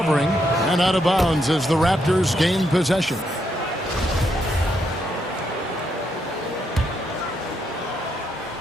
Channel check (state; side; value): normal; both; correlation 0.78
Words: and out of bounds as the Raptors gain possession.